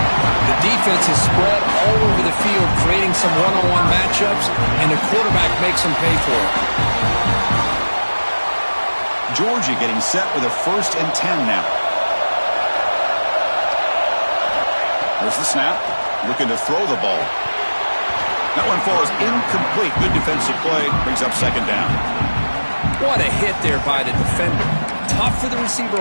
The defense is spread all over the field, creating some one-on-one matchups, and the quarterback makes them pay for it. Georgia getting set with a 1st and 10 now. Here's the snap. Looking to throw the ball. That one falls incomplete. Good defensive play. Brings up second down. What a hit there by the defender. Tough for the receiver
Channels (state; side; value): inverted; both; correlation -1.00